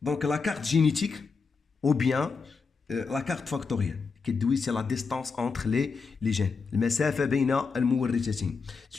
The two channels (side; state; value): right; quieter; 4.9 dB